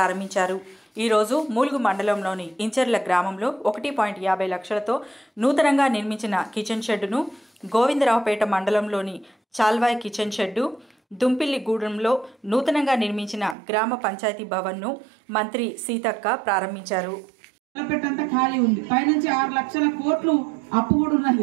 ఈరోజు ములుగు మండలంలోని ఇంచర్ల గ్రామంలో 1.50 లక్షలతో నూతనంగా నిర్మించిన కిచెన్ షెడ్డును, గోవిందరావుపేట మండలంలోని చాల్వాయ్ కిచెన్ షెడ్డు, దుంపిల్లిగూడెంలో నూతనంగా నిర్మించిన గ్రామ పంచాయతీ భవన్ను మంత్రి సీతక్క ప్రారంభించారు. ఖాళీ ఉంది, పైనుంచి 6 లక్షల కోట్లు అప్పు కూడా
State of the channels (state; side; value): drops out; left; at 13.6 s